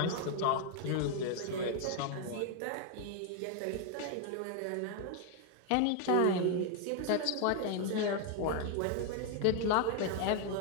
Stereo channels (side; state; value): both; different; correlation 0.00